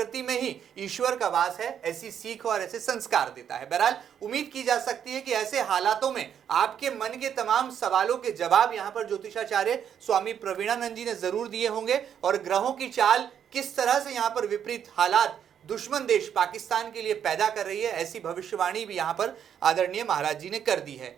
में ही ईश्वर का वास है, ऐसी सीख और ऐसे संस्कार देता है। बहरहाल उम्मीद की जा सकती है कि ऐसे हालातों में आपके मन के तमाम सवालों के जवाब यहाँ पर ज्योतिषाचार्य स्वामी प्रवीणानंद जी ने जरूर दिए होंगे और ग्रहों की चाल किस तरह से यहाँ पर विपरीत हालात दुश्मन देश पाकिस्तान के लिए पैदा कर रही है, ऐसी भविष्यवाणी भी यहाँ पर आदरणीय महाराज जी ने कर दी है।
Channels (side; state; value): left; quieter; 8.7 dB